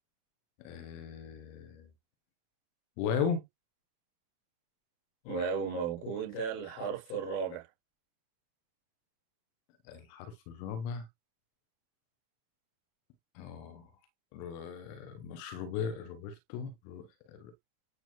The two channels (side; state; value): right; late; 36 ms